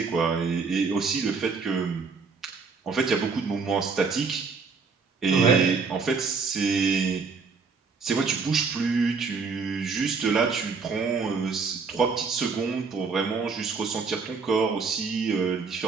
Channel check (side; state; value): left; quieter; 4.9 dB